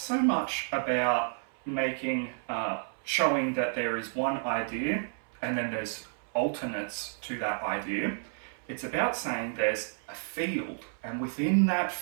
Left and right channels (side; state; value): left; silent; 57 dB below the other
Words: much about showing that there is one idea and then there's alternates to that idea. It's about saying there's a field, and within that